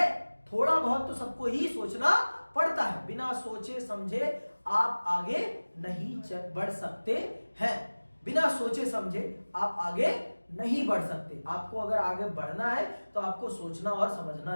थोड़ा बहुत तो सबको ही सोचना पड़ता है। बिना सोचे समझे आप आगे नहीं बढ़ सकते हैं। बिना सोचे समझे आप आगे नहीं बढ़ सकते। आपको अगर आगे बढ़ना है तो आपको सोचना और समझना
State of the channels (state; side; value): inverted; both; correlation -1.00